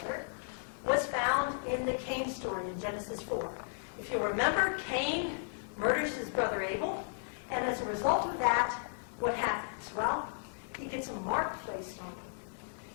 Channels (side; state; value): right; silent; digital silence